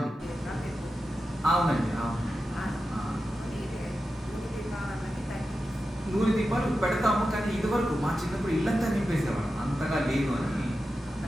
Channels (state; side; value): normal; both; correlation 0.91